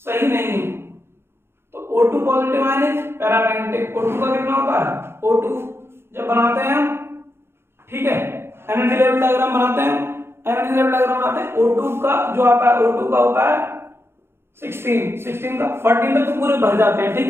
सही नहीं है। तो O2 positive ion is paramagnetic. O2 का कितना होता है, O2 जब बनाते हैं हम, ठीक है, एनर्जी लेवल डायग्राम बनाते हैं, एनर्जी लेवल डायग्राम बनाते हैं, O2 का जो आता है, O2 का होता है 16 का 14 तक तो पूरे भर जाते हैं। ठीक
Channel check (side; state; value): left; late; 0.12 ms